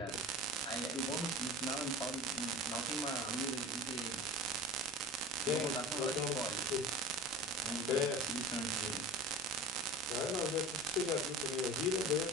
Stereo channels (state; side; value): normal; both; correlation 0.35